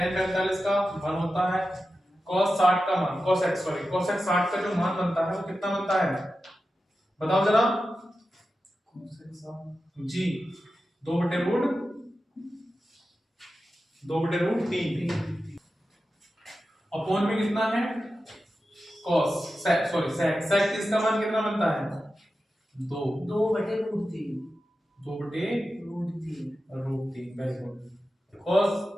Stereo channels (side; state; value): both; normal; correlation 0.92